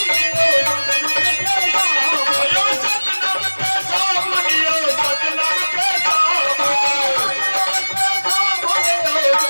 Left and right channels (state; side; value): inverted; both; correlation -1.00